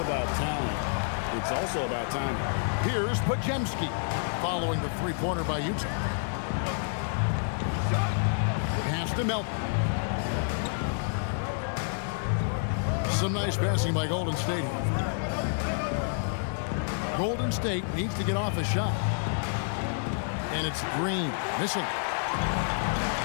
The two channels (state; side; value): silent; right; digital silence